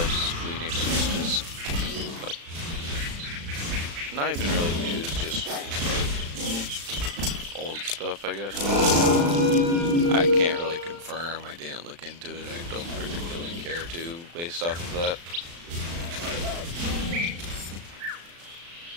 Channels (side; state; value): left; late; 35 ms